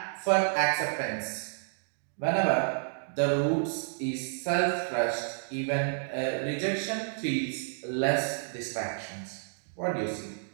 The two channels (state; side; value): silent; left; digital silence